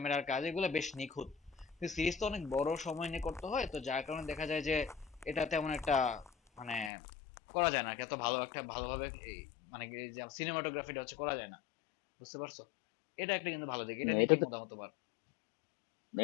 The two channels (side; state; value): right; drops out; at 6.9 s